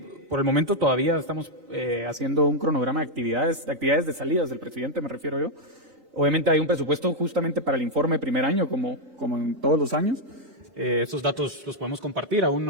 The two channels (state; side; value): late; left; 3.9 ms